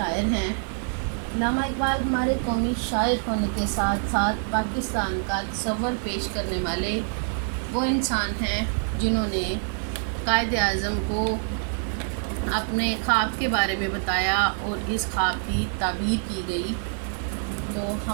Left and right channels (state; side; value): silent; left; 61 dB below the other